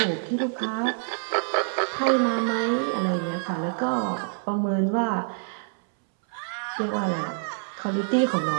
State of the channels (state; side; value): silent; left; 61 dB below the other